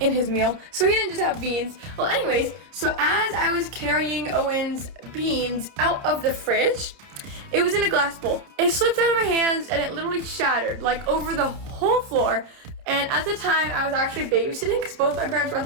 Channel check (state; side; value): late; left; 30 ms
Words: his meal. So he didn't just have beans. Well, anyways, so as I was carrying Owen's beans out of the fridge, it was in a glass bowl. It slipped out of my hands and it literally shattered, like over the whole floor. And at the time, I was actually babysitting because both my parents were at